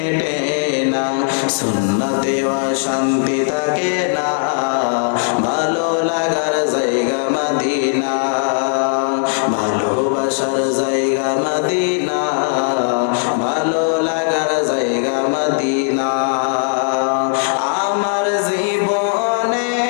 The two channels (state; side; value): silent; right; digital silence